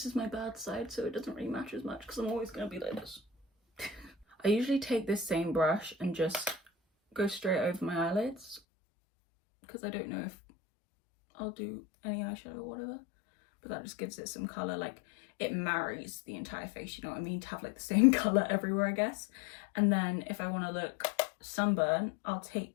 is my bad side, so it doesn't really matter as much because I'm always going to be like this. I usually take this same brush and just go straight over my eyelids because I don't know if I'll do any eyeshadow or whatever. But that just gives it some colour. Like, it marries the entire face, you know what I mean, to have like the same colour everywhere, I guess. And then if I want to look sunburn, I'll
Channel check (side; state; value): right; drops out; at 8.6 s